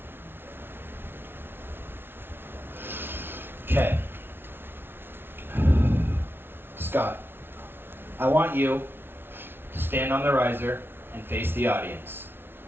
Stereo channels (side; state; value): left; late; 0.11 ms